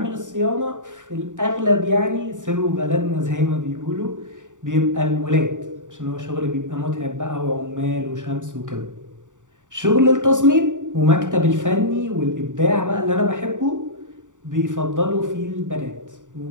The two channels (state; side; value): late; left; 0.86 ms